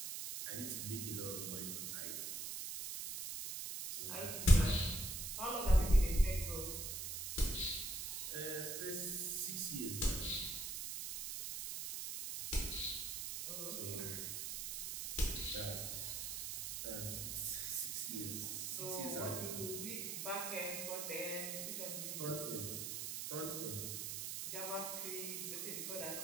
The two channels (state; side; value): noise; right; hiss, 4 dB below the sound